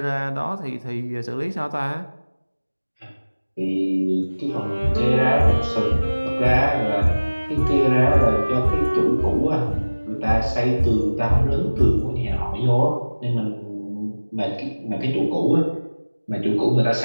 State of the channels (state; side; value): inverted; both; correlation -1.00